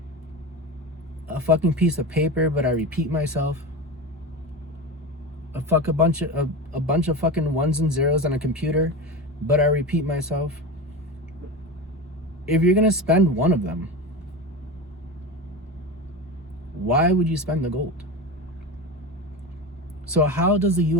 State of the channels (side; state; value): both; normal; correlation 0.24